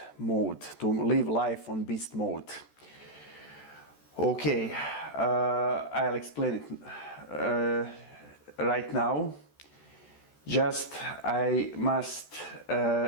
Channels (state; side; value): late; right; 14 ms